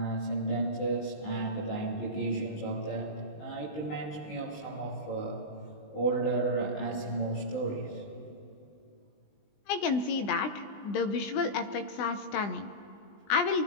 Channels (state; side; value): late; right; 20 ms